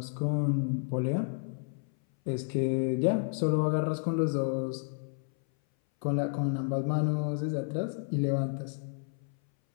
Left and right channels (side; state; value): right; silent; 57 dB below the other